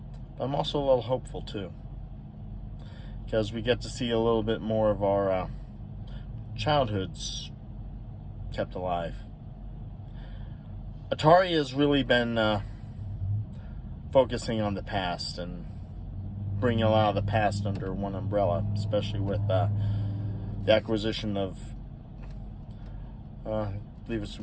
I'm also a little hopeful too, because we get to see a little bit more of our childhoods kept alive. Atari has really been focusing on the past and bringing a lot of the past under one umbrella, especially with the acquisition of I believe it's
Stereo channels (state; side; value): identical; both; correlation 1.00